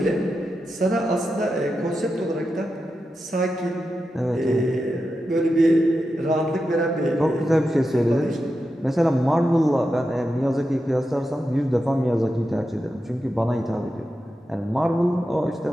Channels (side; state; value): both; normal; correlation 0.89